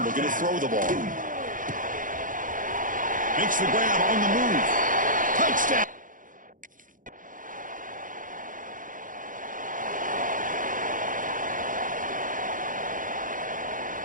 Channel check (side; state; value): left; late; 0.39 ms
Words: looking to throw the ball. Makes the grab on the move. Touchdown.